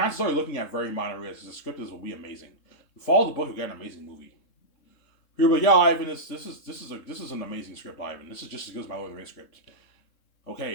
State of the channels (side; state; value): right; late; 3.7 ms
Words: are you're looking at very minor rewrites. The script will be amazing. You follow the book, you get an amazing movie. Here, but yeah, Ivan, this is an amazing script, Ivan. This is just as good as my Lord of the Rings script.